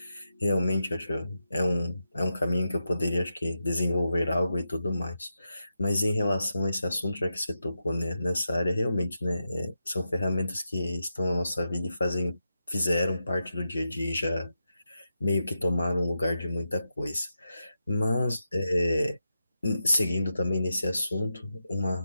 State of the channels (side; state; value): both; inverted; correlation -0.88